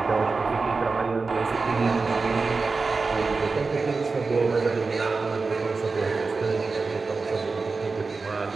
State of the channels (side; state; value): left; quieter; 4.1 dB